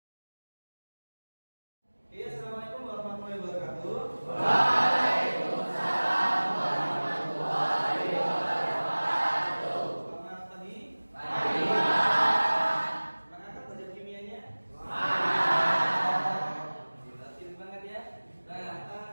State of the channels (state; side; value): inverted; both; correlation -1.00